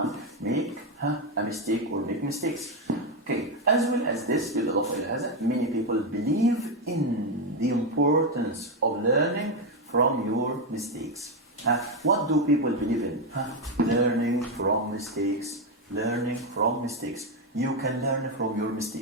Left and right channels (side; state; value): both; normal; correlation 0.07